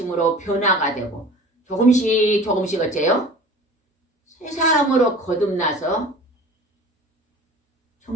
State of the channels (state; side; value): normal; both; correlation 0.41